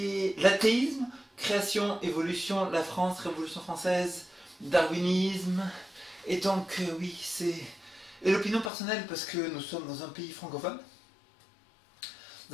l'athéisme, création, évolution, la France, Révolution française, darwinisme. Et donc oui, c'est et l'opinion personnelle parce que nous sommes dans un pays francophone.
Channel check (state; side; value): drops out; right; at 8.7 s